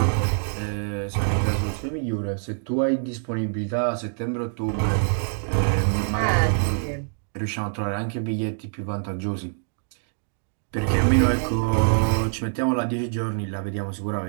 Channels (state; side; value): silent; left; digital silence